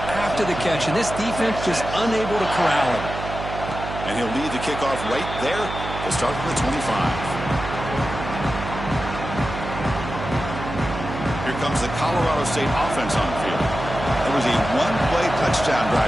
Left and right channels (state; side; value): noise; right; hum, 8 dB below the sound